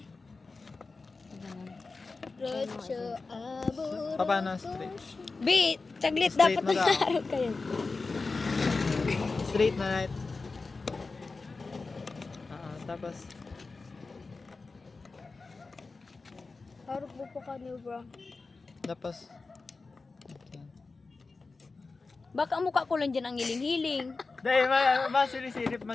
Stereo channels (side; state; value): right; quieter; 4.0 dB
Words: Rocho aburo. Paano straight? B, saglit Straight dapat mo daw. nag-aaral kayo. Straight na right. Tapos. Harap mo pa kanyo, bro. Tapos. Okay. Baka mukha ko lang dyan ang hiling-hiling. Dahil masirisirip